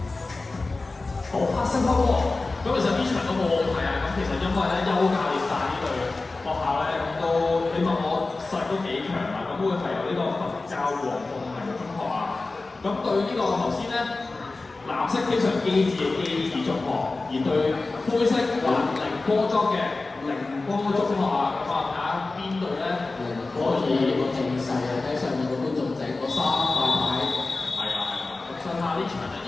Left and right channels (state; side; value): quieter; right; 3.5 dB